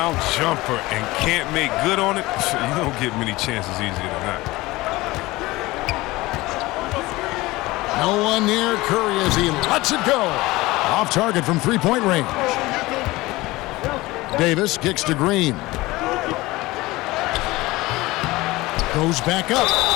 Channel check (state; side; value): quieter; right; 20.0 dB